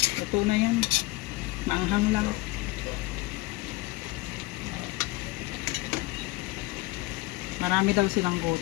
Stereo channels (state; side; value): quieter; right; 20.9 dB